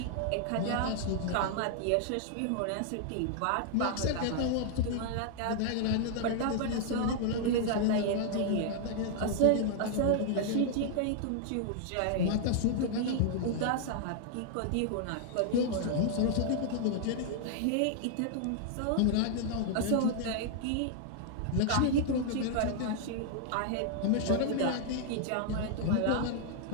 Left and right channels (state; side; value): different; both; correlation -0.01